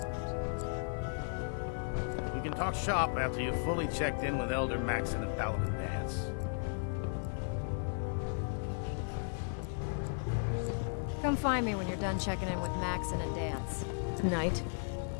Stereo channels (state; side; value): silent; right; 54 dB below the other